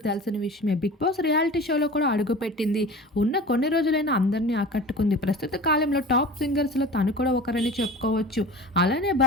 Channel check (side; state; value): both; normal; correlation 0.37